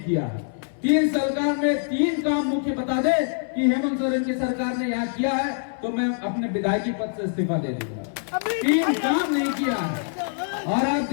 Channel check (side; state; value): right; silent; 62 dB below the other